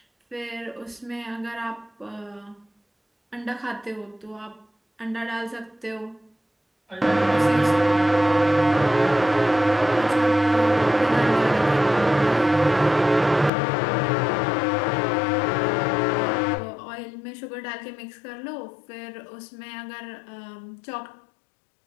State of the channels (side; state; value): right; drops out; at 13.5 s